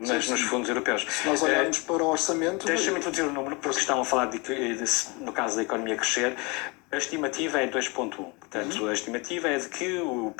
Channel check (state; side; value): quieter; right; 28.1 dB